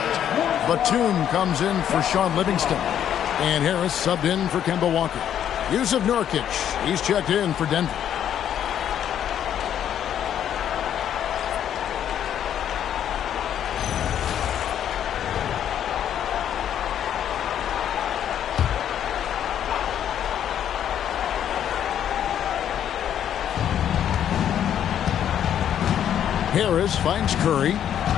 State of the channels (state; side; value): quieter; right; 9.9 dB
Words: Batum comes in for Sean Livingston. And Harris subbed in for Kemba Walker. Yusuf Nurkic, he's checked in for Denver. Harris finds Curry.